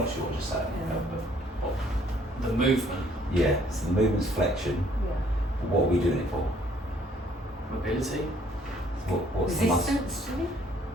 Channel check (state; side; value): normal; both; correlation 0.63